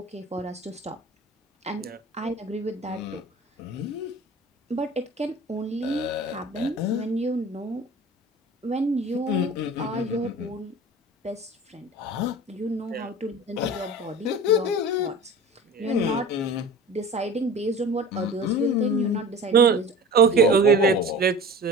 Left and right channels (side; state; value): both; normal; correlation 0.38